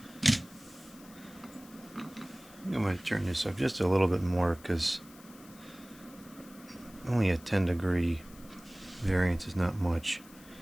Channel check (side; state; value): left; noise; hiss, 22 dB below the sound